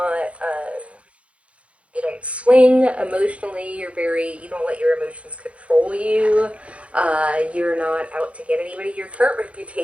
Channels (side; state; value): left; late; 0.062 ms